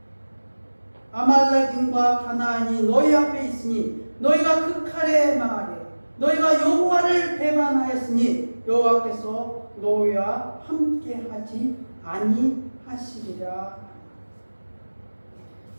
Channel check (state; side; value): inverted; both; correlation -1.00